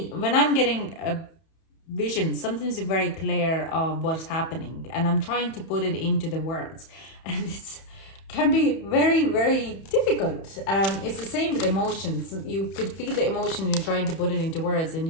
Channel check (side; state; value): right; late; 31 ms